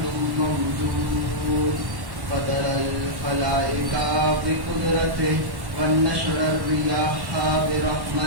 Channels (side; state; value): left; late; 1.1 ms